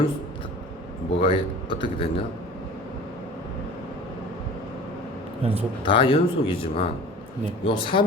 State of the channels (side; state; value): both; normal; correlation 0.41